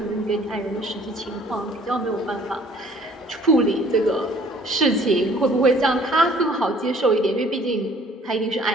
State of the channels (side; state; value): both; normal; correlation 0.56